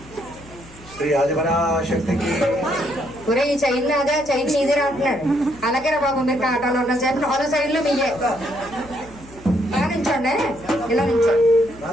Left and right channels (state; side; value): noise; left; hum, 21 dB below the sound